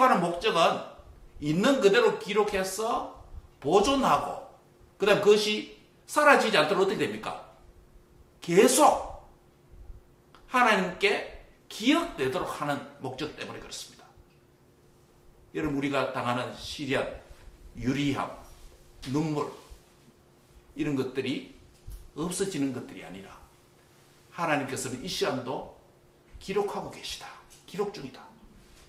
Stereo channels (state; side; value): identical; both; correlation 1.00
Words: 목적은 있는 그대로 기록해서 보존하고 그 다음 그것이 사라지지 않도록 어떻게 됩니까? 계속 하나님께 기억되도록 하는 목적 때문에 그렇습니다. 여러분 우리가 당하는 시련, 유리함, 눈물 이런 것들이 없어지는 것들이 아니라 하나님께서는 이 시간도 기록하고 계시다. 기록 중이다.